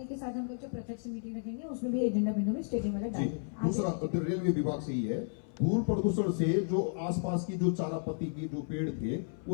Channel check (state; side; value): silent; right; 56 dB below the other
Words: के साथ हम लोग जो प्रत्यक्ष मीटिंग रखेंगे उसमें भी एजेंडा बिंदु में स्टेडियम वाला जी, डालेंगे। दूसरा रेलवे विभाग से ही है, धूल प्रदूषण से जो आसपास की जो चारा पत्ती की जो पेड़ थे